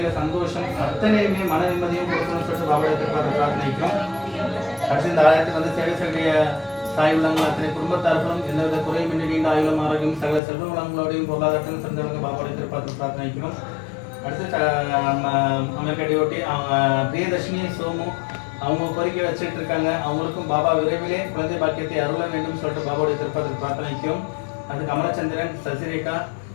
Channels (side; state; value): right; drops out; at 10.4 s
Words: சந்தோஷம் அத்தனையுமே மன நிம்மதியும் கொடுக்கணும்னு சொல்லிட்டு பாபா எதிர்பார்த்து பிரார்த்தனைக்கும். அடுத்து இந்த ஆலயத்துக்கு வந்து சேவை செய்ய தாய் உள்ளங்கள் அத்தனை குடும்பத்தார்களும் எந்தவித குறையுமின்றி நீண்ட ஆயுளும் ஆரோக்கியம் சகல செல்வ வளங்களோடையும் பொருளாதாரத்திலும் சிறந்தவங்க பாபாவோட எதிர்பார்த்து பிரார்த்தனைக்கிறோம். அடுத்து அமெரிக்காடியோட்டி அவங்க பிரியதர்ஷினி சோமு அவங்க கோரிக்கை வச்சுட்டு இருக்காங்க. அவங்களுக்கும் பாபா விரைவிலே குழந்தை பாக்கியத்தை அருள வேண்டும் சொல்லிட்டு பாபாவோட எதிர்பார்த்து பிரார்த்தனைக்கும். அது கமலச்சந்திரன் சசிரேகா